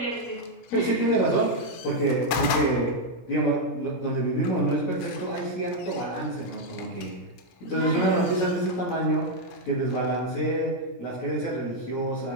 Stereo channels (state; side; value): late; right; 17 ms